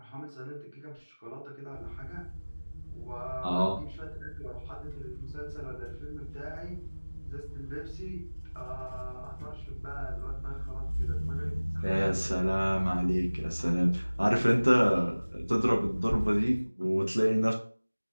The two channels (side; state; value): both; inverted; correlation -1.00